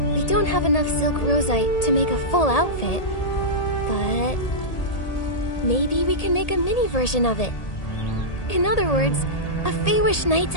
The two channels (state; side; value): late; right; 1.8 ms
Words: We don't have enough silk rosite to make a full outfit, but maybe we can make a mini version of it. In other words, a Feywish Knight's